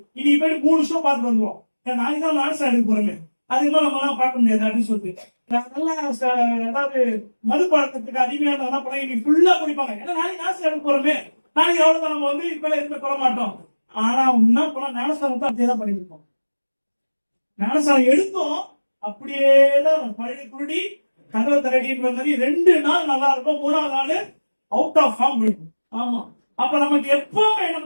இன்னைக்கு போய் 3 வருஷம் பார்த்துட்டு வந்துருவோம், நாளைக்கு தான் ஞானஸ்தானத்துக்கு போறோமே, அதுக்கு மேல நம்ம எல்லாம் பார்க்க முடியாது அப்படின்னு சொல்லிட்டு நல்லா ஏதாவது மது பழக்கத்துக்கு அடிமையான என்ன பண்ண இன்னைக்கு ஃபுல்லா குடிப்பாங்க. ஏன்னா நாளைக்கு ஞானஸ்தானத்துக்கு போறோமே, நாளைக்கு எவ்வளவு நம்ம வந்து இப்ப எதுவுமே சொல்ல மாட்டோம். ஆனா என்ன பண்ண, ஞானஸ்தானத்தை அப்படியே தான் பண்ணிருப்போம். ஞானஸ்தானம் எடுத்தோம் அப்படியேதான் பழைய குருடி கதவை தரடின்ற மாதிரி 2 நாள் நல்லா இருக்கும், 3ஆவது நாள் அவுட் ஆஃப் ஃபார்ம் இருக்கும். ஆமா, அப்ப நமக்கு எப்பவுமே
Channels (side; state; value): both; inverted; correlation -1.00